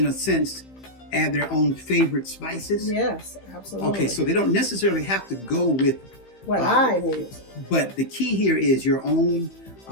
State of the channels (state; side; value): late; right; 15 ms